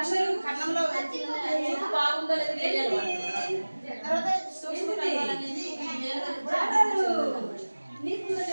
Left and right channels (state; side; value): inverted; both; correlation -1.00